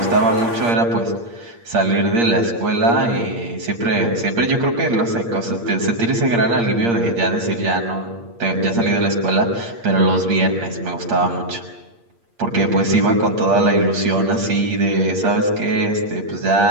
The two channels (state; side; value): late; left; 8.6 ms